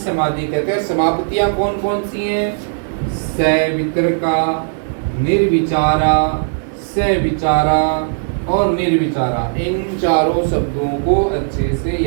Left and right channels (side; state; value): left; silent; digital silence